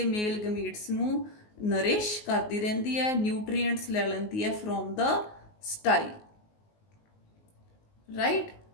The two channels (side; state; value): right; late; 19 ms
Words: ਮੇਲ ਗਮੀਟਸ ਨੂੰ ਨਰਿਸ਼ ਕਰਦੀ ਰਹਿੰਦੀ ਹੈ, ਨਿਊਟਰੀਐਂਟਸ ਲੈ ਲੈਂਦੀ ਹੈ from the style, right.